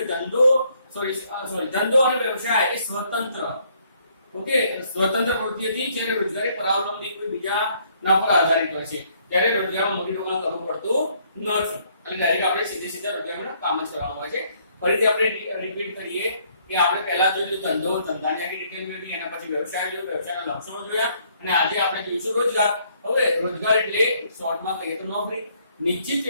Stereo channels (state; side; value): inverted; both; correlation -0.66